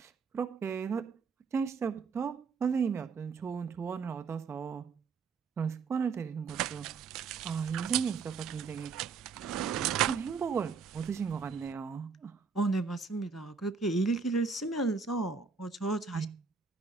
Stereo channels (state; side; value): quieter; left; 5.3 dB